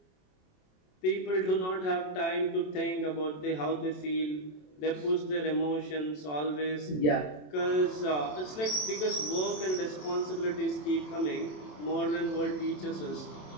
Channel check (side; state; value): right; late; 27 ms